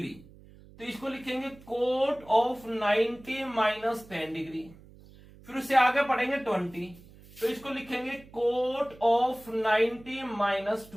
तो इसको लिखेंगे कोट ऑफ 90 माइनस 10 डिग्री। फिर उससे आगे पढ़ेंगे 20, तो इसको लिखेंगे कोट ऑफ 90 माइनस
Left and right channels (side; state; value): right; noise; hum, 22 dB below the sound